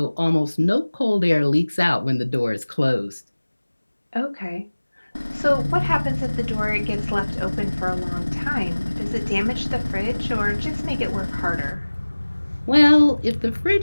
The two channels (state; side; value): inverted; both; correlation -1.00